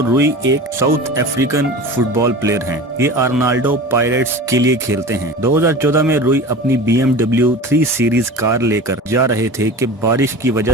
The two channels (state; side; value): normal; both; correlation 0.35